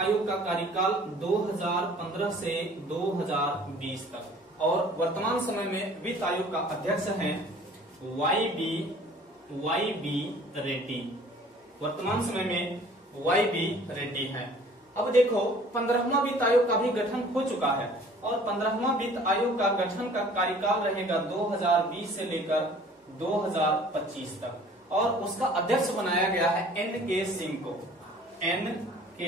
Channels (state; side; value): normal; both; correlation 0.51